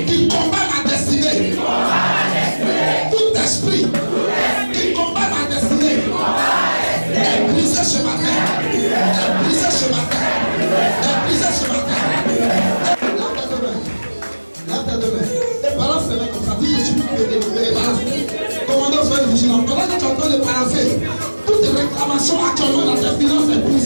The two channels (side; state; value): both; inverted; correlation -1.00